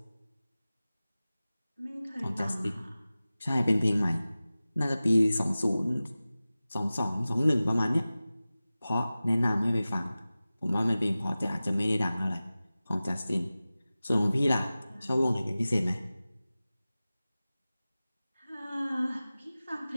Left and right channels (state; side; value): inverted; both; correlation -0.97